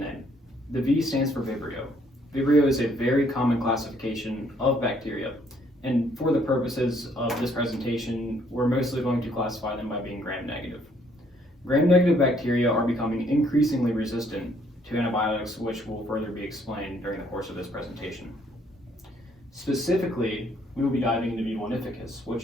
The V stands for Vibrio. Vibrio is a very common classification of bacteria, and for the purposes of this presentation, we're mostly going to classify them by being gram-negative. Gram-negative bacteria are becoming increasingly resistant to antibiotics, which will further be explained during the course of this presentation. Specifically, we will be diving into V. vulnificus,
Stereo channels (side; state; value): both; normal; correlation 0.66